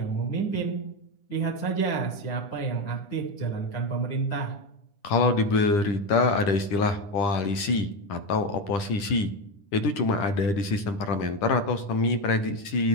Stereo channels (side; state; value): right; late; 10 ms